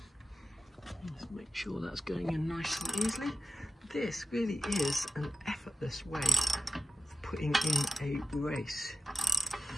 let's make sure that's going in nice and easily. This really is an effortless way of putting in a race.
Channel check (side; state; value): both; normal; correlation 0.91